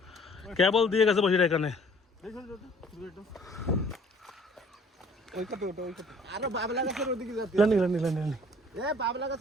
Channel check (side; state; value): both; normal; correlation 0.55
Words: কেবল দিয়ে গেছে বসে এখানে